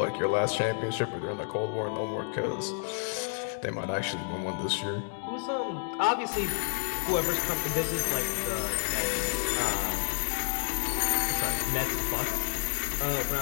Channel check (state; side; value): silent; right; digital silence